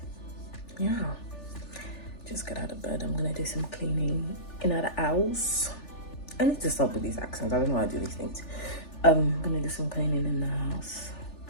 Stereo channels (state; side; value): late; right; 3.4 ms